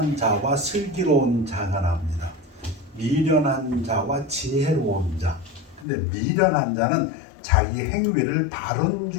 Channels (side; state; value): right; drops out; at 5.9 s